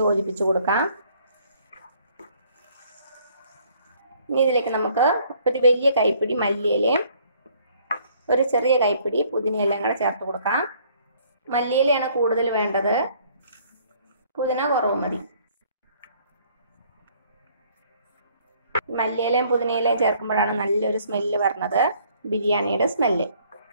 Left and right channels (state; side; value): inverted; both; correlation -0.61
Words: യോജിപ്പിച്ച് കൊടുക്കാം. ഇനി ഇതിലേക്ക് നമുക്ക് ഒരു വലിയ കൈപ്പിടി മല്ലിയിലയും ഒരു ചെറിയ കൈപ്പിടി പുതിനയിലയും കൂടെ ചേർത്ത് കൊടുക്കാം. മല്ലിയിലയാണ് കൂടുതൽ വേണ്ടത്, പുതിന കുറവ് മതി. മല്ലിയിലയും പുതിനയിലയും ചേർക്കുമ്പോഴാണ് നല്ലൊരു സ്മെല്ല് വരുന്നത്, ബിരിയാണിയുടെ സ്മെല്ല്.